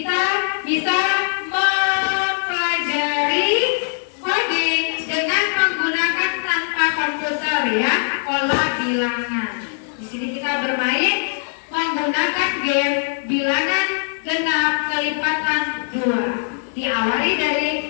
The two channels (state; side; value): silent; right; digital silence